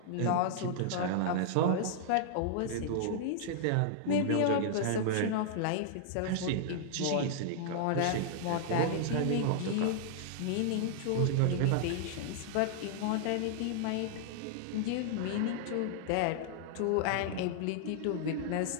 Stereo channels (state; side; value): different; both; correlation -0.01